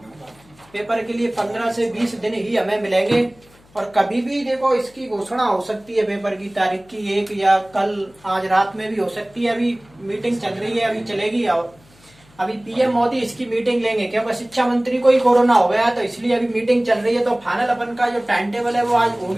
पेपर के लिए 15 से 20 दिन ही हमें मिलेंगे, और कभी भी देखो इसकी घोषणा हो सकती है पेपर की तारीख की, 1 या कल आज रात में भी हो सकती है। अभी मीटिंग चल रही है, अभी चलेगी, और अभी पीएम मोदी इसकी मीटिंग लेंगे, क्योंकि शिक्षा मंत्री को ही कोरोना हो गया, तो इसलिए अभी मीटिंग चल रही है। तो फाइनल अपन का जो टाइम टेबल है वो आज हो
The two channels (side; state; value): left; noise; hum, 29 dB below the sound